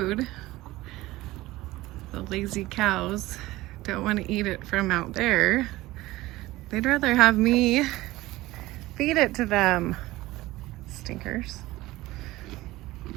The lazy cows don't want to eat it from out there. They'd rather have me feed it to them. Stinkers.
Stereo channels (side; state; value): left; quieter; 18.1 dB